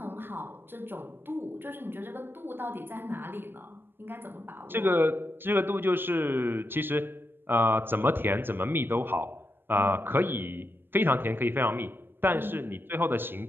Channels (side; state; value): left; late; 0.10 ms